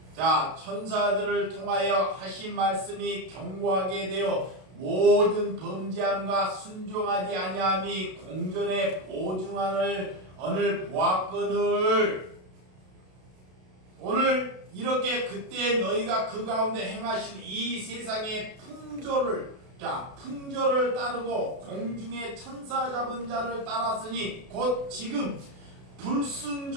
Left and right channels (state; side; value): late; left; 32 ms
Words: 자, 천사들을 통하여 하신 말씀이 견고하게 되어 모든 범죄함과 순종하지 아니함이 공전에 보증하는 언을 보았거늘. 오늘 이렇게 그때 너희가 그 가운데 행하신 이 세상의 풍조를 따르고 공중의 천사 잡은 자를 따랐으니 곧 지금